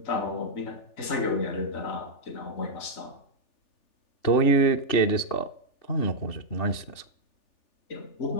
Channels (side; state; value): right; late; 3.4 ms